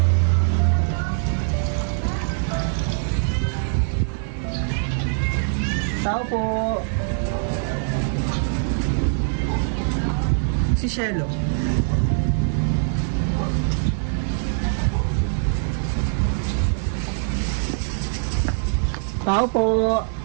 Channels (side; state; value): left; silent; digital silence